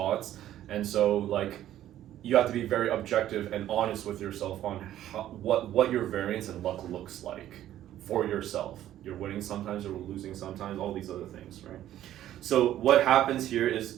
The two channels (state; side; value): quieter; left; 12.5 dB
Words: and so like you have to be very objective and honest with yourself on what your variance and luck looks like for yourself. You're winning sometimes, you're losing sometimes, all these other things, right? So what happens here is